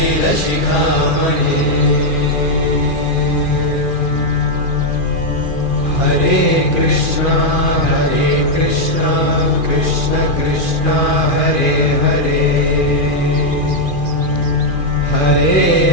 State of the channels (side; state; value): right; late; 2.4 ms